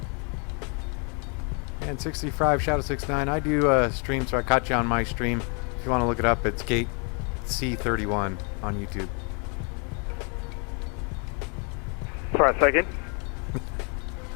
And 65, Shadow 69, I do stream, so I caught you on my stream. If you want to look it up, it's Gate C31 on YouTube. Sorry, say again?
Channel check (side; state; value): right; quieter; 36.4 dB